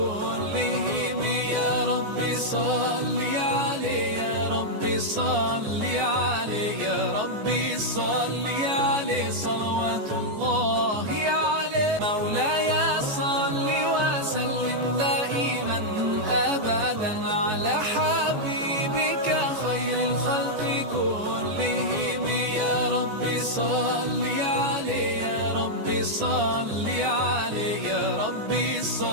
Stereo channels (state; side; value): late; left; 14 ms